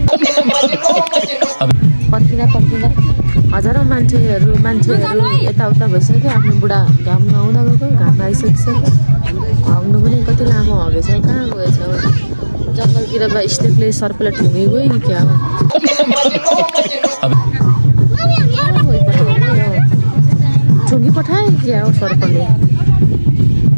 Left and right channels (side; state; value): both; inverted; correlation -1.00